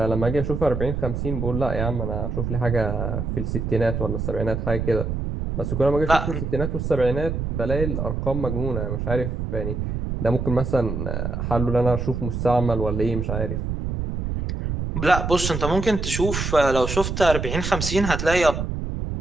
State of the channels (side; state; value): right; noise; rumble, 3 dB below the sound